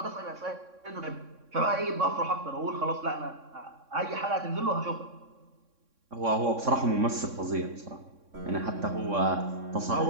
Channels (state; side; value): late; left; 3.6 ms